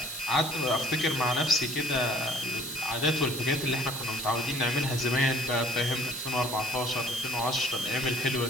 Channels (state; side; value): noise; right; hiss, 8 dB below the sound